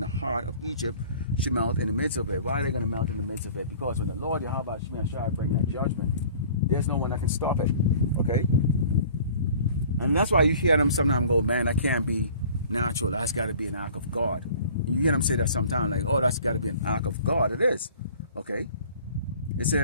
the heart of Egypt should melt in the midst of it. Why are they going to melt in the midst of it? Because when the Lord Yahweh shall bring that judgment, there's no one that can stop it. Okay? And that's why you hear them sometimes go, man, that can't be natural. That's got to be an act of God. And you hear them say that sometimes, like, oh, that's got to be an act of God. It is. Okay? It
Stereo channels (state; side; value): inverted; both; correlation -0.48